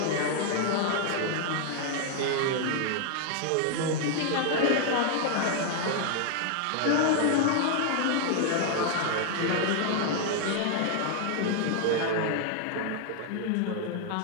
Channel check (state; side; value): different; both; correlation 0.01